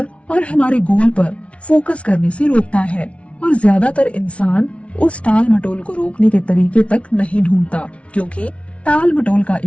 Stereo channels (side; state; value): right; late; 0.062 ms